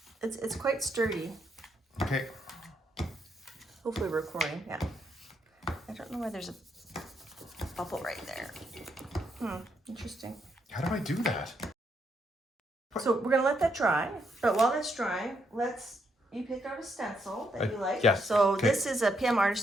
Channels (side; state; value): both; normal; correlation 0.77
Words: It's quite sturdy. Okay. Hopefully we're recording, yeah. I don't know why there's a bubble right there. Interesting. How do I do that? So we're gonna let that dry, but while that's drying, you picked out a stencil that you like. Yes. So this is a PM